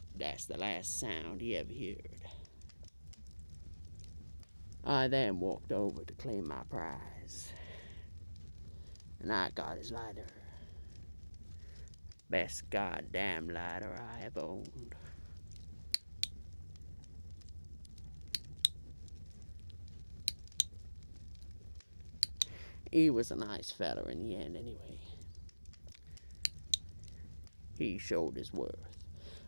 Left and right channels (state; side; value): inverted; both; correlation -1.00